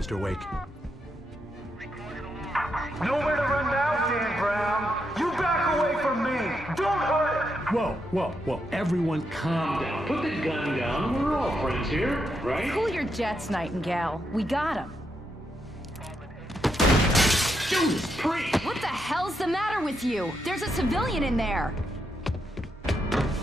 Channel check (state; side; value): normal; both; correlation 0.81